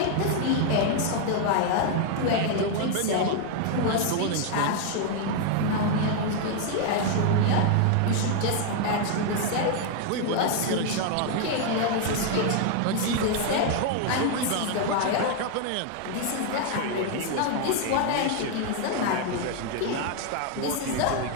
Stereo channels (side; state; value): both; different; correlation 0.00